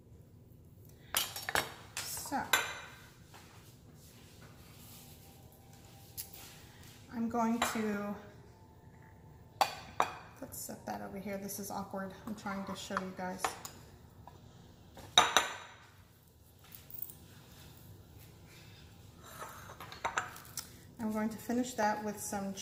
So I'm going to, let's set that over here. This is awkward. I'm trying to show you guys. I'm going to finish that with some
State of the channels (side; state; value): both; identical; correlation 1.00